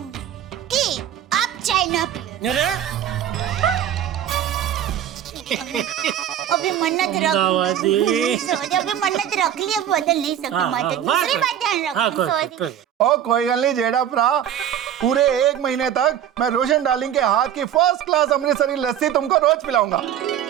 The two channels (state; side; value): quieter; left; 10.2 dB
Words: कि आप चाय ना पिए। अरे अभी मन्नत रख सॉरी, अभी मन्नत रख ली, अब बदल नहीं सकती माता। दूसरी बात ध्यान रखो, सॉरी। ओ कोई गल नहीं जेड़ा भरा, पूरे 1 महीने तक मैं रोशन डार्लिंग के हाथ की फर्स्ट क्लास अमृतसरी लस्सी तुमको रोज पिलाऊंगा।